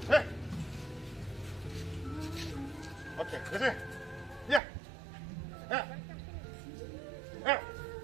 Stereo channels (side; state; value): left; drops out; at 4.6 s